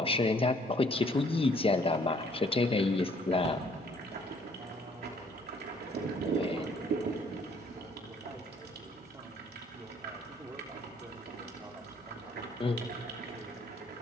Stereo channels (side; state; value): both; normal; correlation 0.61